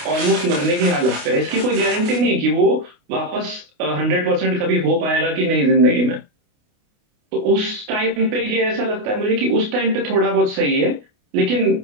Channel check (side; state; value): left; late; 29 ms